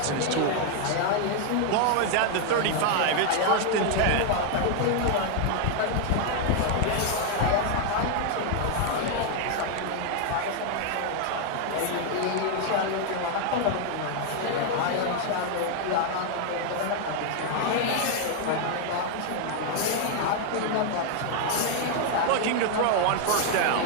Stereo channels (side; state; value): both; different; correlation 0.00